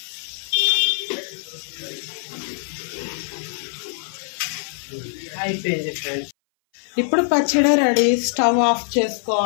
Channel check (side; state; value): right; silent; 59 dB below the other